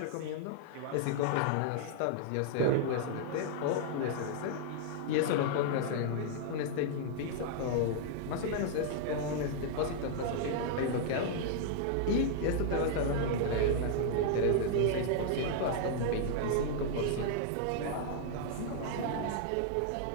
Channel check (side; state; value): both; different; correlation -0.01